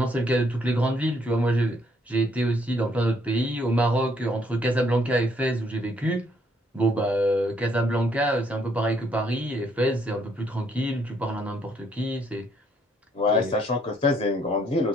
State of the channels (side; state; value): both; normal; correlation 0.69